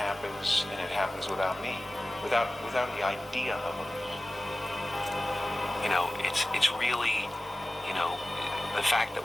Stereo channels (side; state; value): both; normal; correlation 0.97